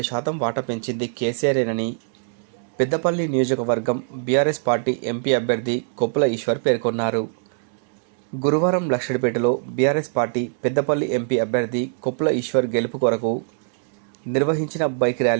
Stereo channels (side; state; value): left; silent; 64 dB below the other